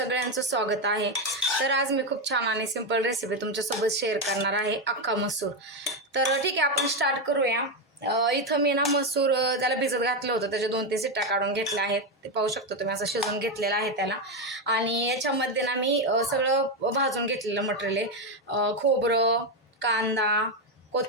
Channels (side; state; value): both; normal; correlation 0.08